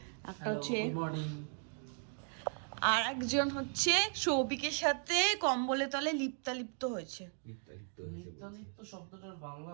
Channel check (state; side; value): silent; left; 53 dB below the other